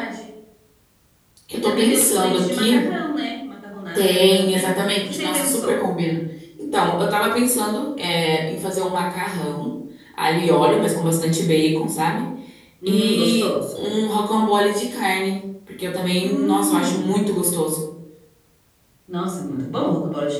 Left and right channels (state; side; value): identical; both; correlation 1.00